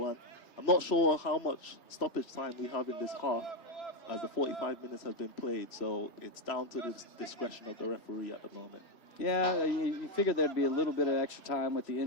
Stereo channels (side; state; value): right; late; 3.0 ms